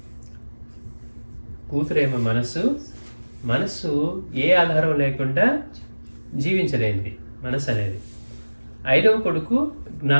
కూతురేమో మనస్సు ఏ ఆధారం లేకుండా జీవించలేనిది మనస్సు అనేది. 5వ కొడుకు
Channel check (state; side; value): inverted; both; correlation -1.00